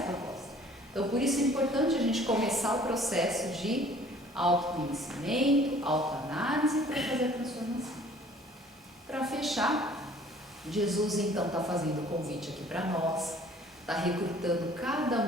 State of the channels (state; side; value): normal; both; correlation 0.54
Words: proposta. Então, por isso é importante a gente começar o processo de autoconhecimento, autoanálise para fazer a transformação. Para fechar, Jesus então está fazendo o convite aqui para nós, está recrutando cada